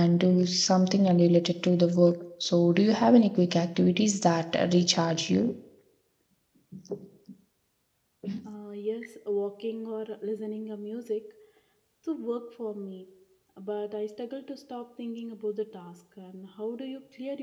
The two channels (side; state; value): both; identical; correlation 1.00